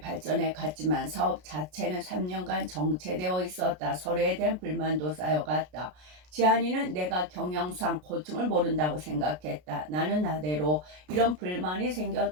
갔지만 사업 자체는 3년간 정체되어 있었다. 서로에 대한 불만도 쌓여갔다. 지한이는 내가 경영상 고충을 모른다고 생각했다. 나는 나대로 이런 불만이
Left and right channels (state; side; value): late; left; 33 ms